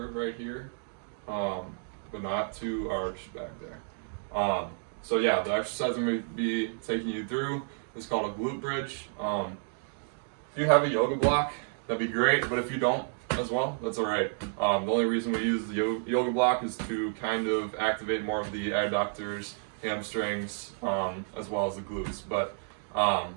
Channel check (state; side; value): silent; left; 57 dB below the other